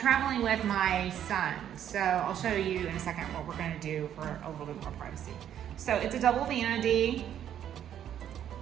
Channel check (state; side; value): quieter; left; 10.1 dB